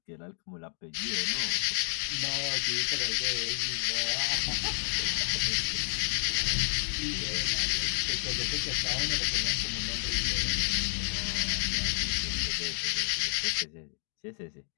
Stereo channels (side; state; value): right; silent; 57 dB below the other